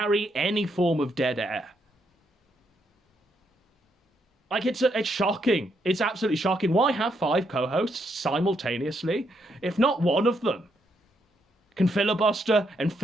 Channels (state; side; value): normal; both; correlation 0.77